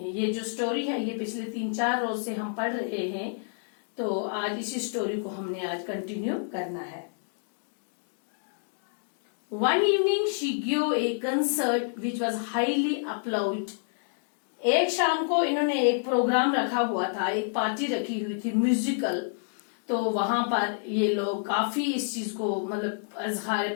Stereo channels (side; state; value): right; silent; digital silence